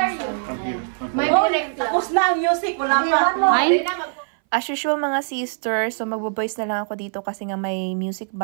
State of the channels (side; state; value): left; silent; 61 dB below the other